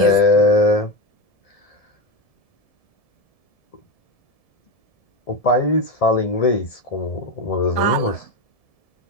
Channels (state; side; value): late; right; 1.7 ms